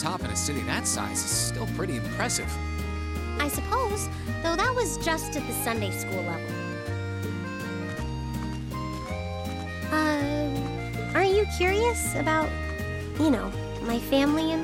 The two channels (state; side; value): identical; both; correlation 1.00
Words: in a city that size is still pretty impressive. I suppose, though that was just at the Sunday school level. Aren't you curious about, my family